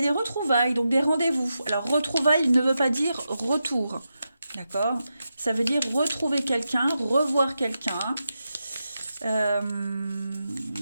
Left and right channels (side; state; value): both; inverted; correlation -0.88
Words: des retrouvailles, donc des rendez-vous. Alors, retrouvailles ne veut pas dire retour, d'accord? Ça veut dire retrouver quelqu'un, revoir quelqu'un.